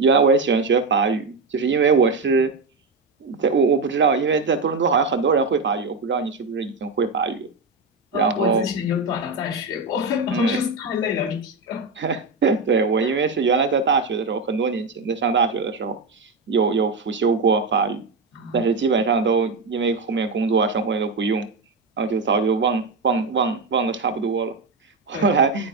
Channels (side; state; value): left; quieter; 3.8 dB